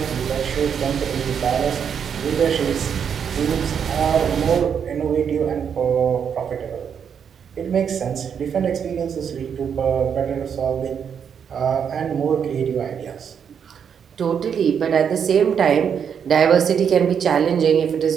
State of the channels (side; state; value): left; quieter; 7.5 dB